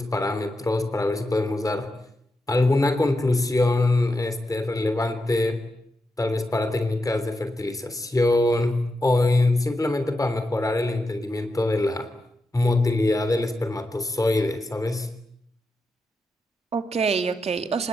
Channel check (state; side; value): normal; both; correlation 0.87